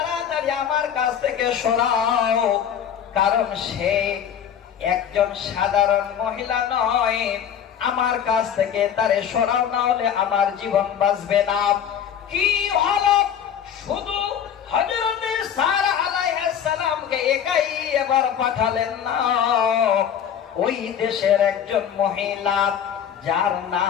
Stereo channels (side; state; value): right; quieter; 8.7 dB